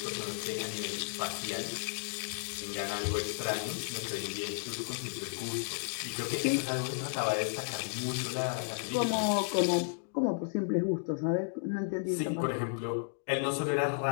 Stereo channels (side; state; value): right; silent; digital silence